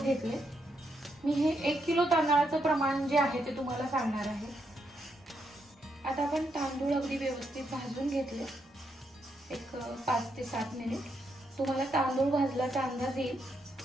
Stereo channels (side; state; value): both; normal; correlation 0.79